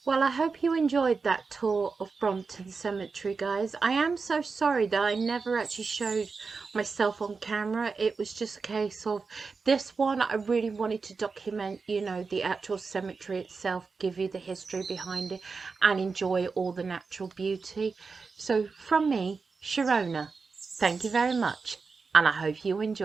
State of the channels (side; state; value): left; quieter; 4.7 dB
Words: Well, I hope you enjoyed that tour of Brompton Cemetery, guys. I am so sorry that I never actually showed myself on camera. It was just a case of this one, I really wanted to document, you know, the actual cemetery itself, give you the history behind it, and enjoy all the natural beauty. So from me, Sharona, thank you very much, and I hope you